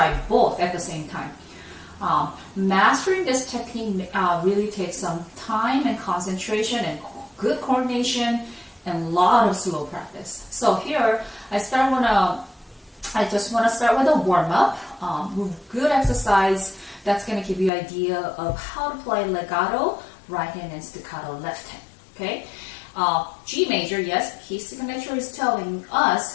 both at the same time. Mastering this technique really takes some time and concentration and good coordination and a lot of slow practice. So here, I just want to start with a warm-up, good exercise that's going to give you an idea of how to play legato, right hand, and staccato, left hand. Okay, G major, yes, key signature is telling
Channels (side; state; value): right; drops out; at 17.7 s